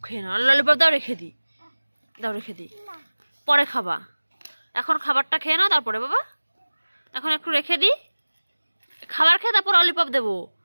খেয়ে নাও, ললিপপ দাও রেখে দিই, দাও রেখে দিই, পরে খাবা। এখন খাবারটা খেয়ে নাও তারপরে বাবা, এখন একটু রেখে দিই, খাবার খেয়ে তারপর ললিপপ দেবো,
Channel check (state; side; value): inverted; both; correlation -1.00